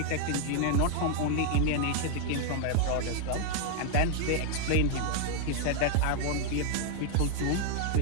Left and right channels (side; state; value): both; different; correlation 0.00